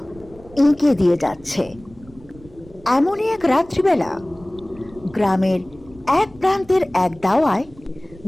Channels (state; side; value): noise; right; rumble, 23 dB below the sound